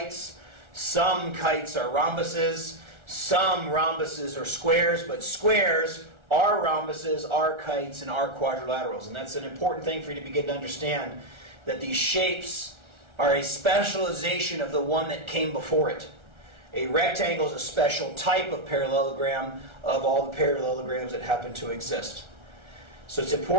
Some kites are rhombuses. Some rhombuses are squares, but squares are rhombuses, are kites, and are quadrilaterals. And that's an important thing for you to begin to understand, that these shapes are a specialization of the one that came before it. A rectangle is a special type of parallelogram of all the parallelograms that happen to exist. So it's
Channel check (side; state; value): left; late; 1.4 ms